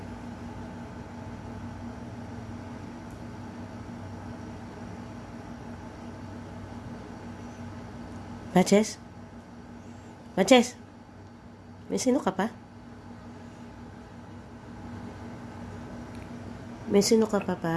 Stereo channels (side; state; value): both; identical; correlation 1.00